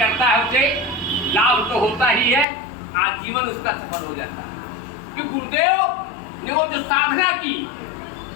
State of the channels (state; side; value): drops out; right; at 2.5 s